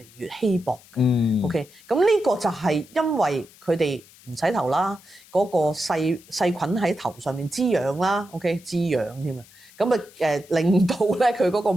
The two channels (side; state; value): left; noise; hiss, 25 dB below the sound